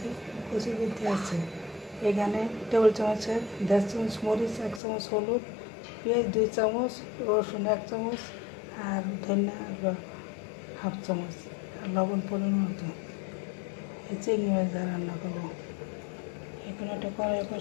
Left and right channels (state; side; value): drops out; right; at 4.8 s